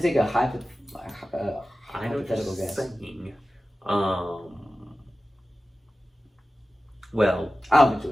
take a hypothetical guess. Saying. Well, I don't think she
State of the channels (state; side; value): normal; both; correlation 0.95